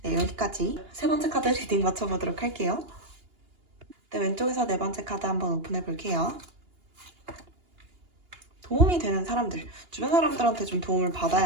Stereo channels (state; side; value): late; left; 2.8 ms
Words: 네, 여기까지 세 번째 카드 리딩 맞춰보도록 할게요. 네, 왼쪽에서 네 번째 카드 한번 오픈해 볼게요. 도움이 되는 사람들, 주변 사람들한테 좀 도움을